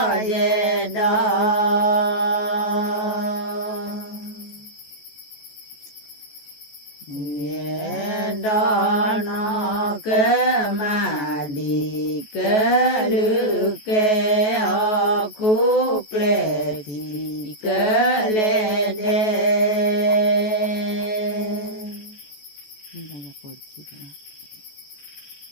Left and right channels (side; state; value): right; late; 14 ms